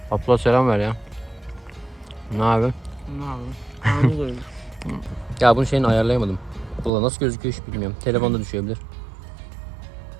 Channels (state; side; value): drops out; left; at 6.9 s